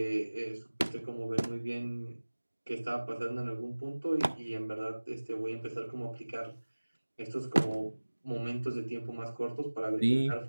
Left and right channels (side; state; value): both; inverted; correlation -1.00